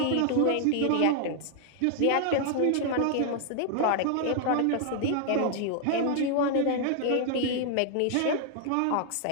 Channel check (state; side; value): different; both; correlation 0.00